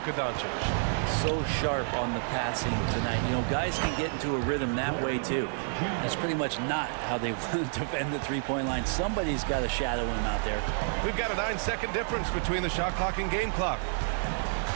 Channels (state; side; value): silent; left; digital silence